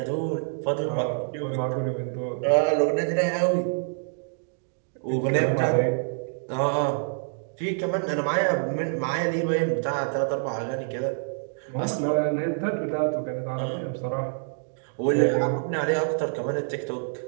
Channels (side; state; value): left; silent; digital silence